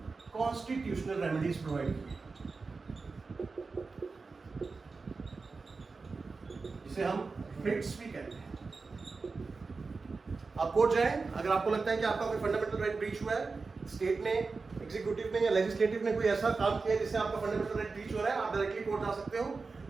constitutional remedies provide की, जिसे हम रिट्स भी कहते हैं। आप कोर्ट जाएं, अगर आपको लगता है कि आपका कोई फंडामेंटल राइट ब्रीच हुआ है, स्टेट ने, एग्जीक्यूटिव ने या लेजिस्लेटिव ने कोई ऐसा काम किया जिससे आपका फंडामेंटल राइट ब्रीच हो रहा है, आप डायरेक्टली कोर्ट जा सकते हो।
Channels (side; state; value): left; quieter; 4.2 dB